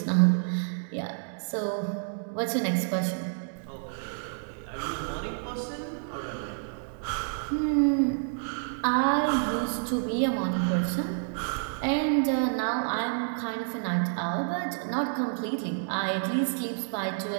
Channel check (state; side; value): silent; left; digital silence